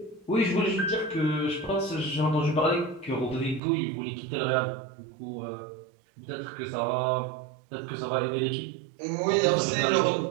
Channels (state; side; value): drops out; left; at 3.6 s